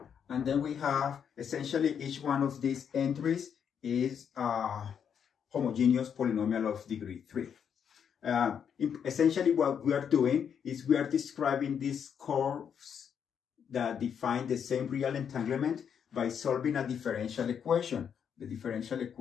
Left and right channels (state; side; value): quieter; right; 7.8 dB